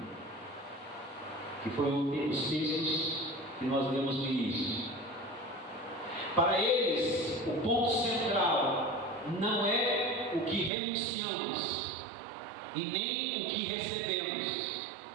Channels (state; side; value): drops out; left; at 10.7 s